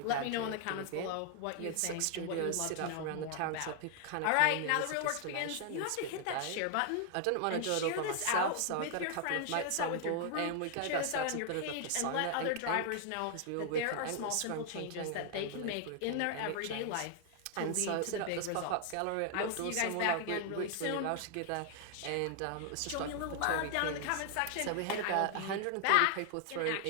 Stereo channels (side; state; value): both; different; correlation 0.00